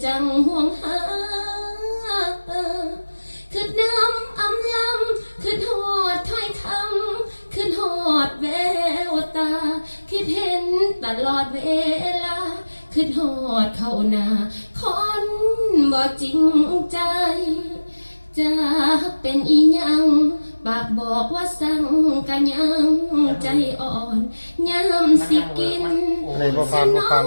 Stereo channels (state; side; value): inverted; both; correlation -1.00